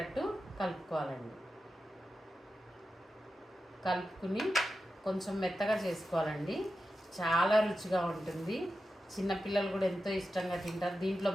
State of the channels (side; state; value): both; normal; correlation 0.91